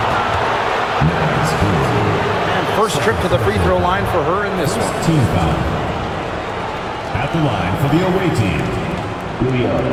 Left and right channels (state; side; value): identical; both; correlation 1.00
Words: And first trip to the free throw line for her in this one. Team foul. At the line for the away team,